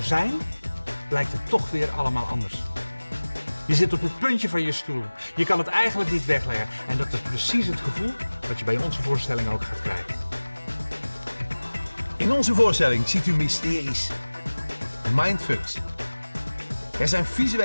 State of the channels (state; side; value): inverted; both; correlation -1.00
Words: zijn, blijkt het toch weer allemaal anders. Je zit op het puntje van je stoel. Je kan het eigenlijk niet wegleggen. En dat is precies het gevoel wat je bij onze voorstelling ook gaat krijgen. In onze voorstelling ziet u mysteries, mindfucks. Er zijn